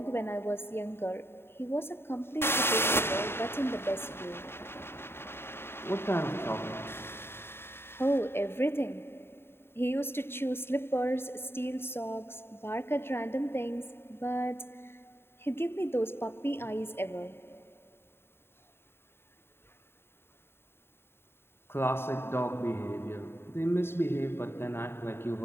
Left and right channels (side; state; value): right; late; 0.11 ms